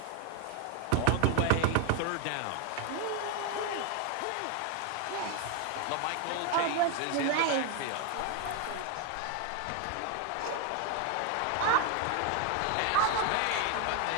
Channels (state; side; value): different; both; correlation 0.01